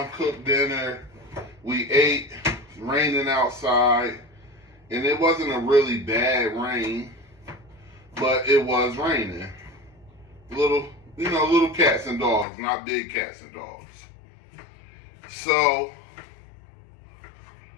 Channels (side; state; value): right; drops out; at 12.5 s